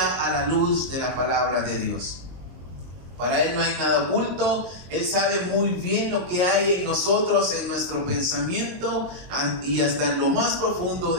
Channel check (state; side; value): late; left; 22 ms